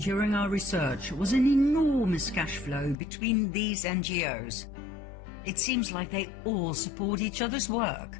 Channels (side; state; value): right; drops out; at 3.0 s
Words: our research was an enormous cash flow between these NGOs. It seems like they all support each other's